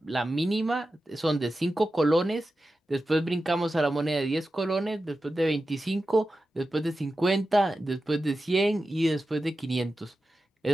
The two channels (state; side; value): normal; both; correlation 0.92